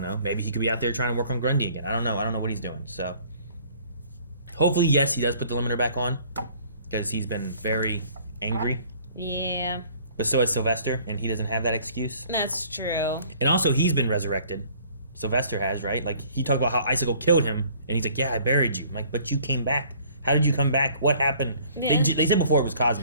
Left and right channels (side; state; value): both; inverted; correlation -0.55